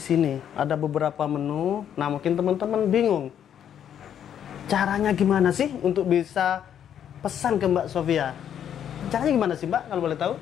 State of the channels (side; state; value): right; quieter; 9.4 dB